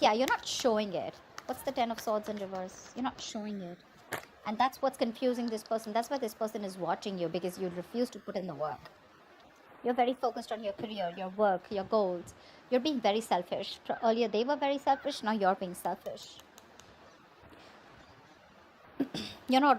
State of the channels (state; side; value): identical; both; correlation 1.00